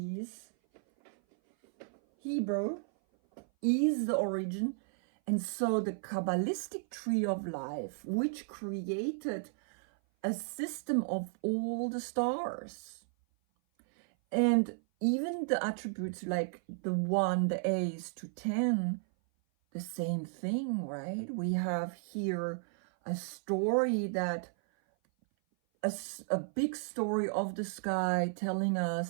Hebrew, is the origin. And so the Kabbalistic tree of life, which created a system of all the stars, and even the attributes like the 1, the A's to 10, the same thing, right? We have here a story that, a big story of the sky telling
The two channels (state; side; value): silent; left; 55 dB below the other